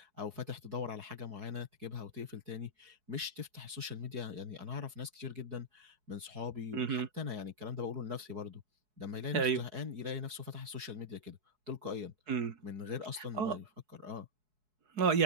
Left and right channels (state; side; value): late; left; 4.7 ms